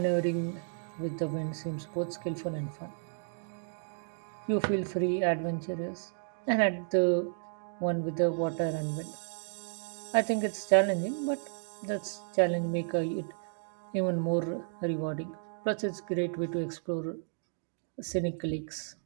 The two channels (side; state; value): left; silent; digital silence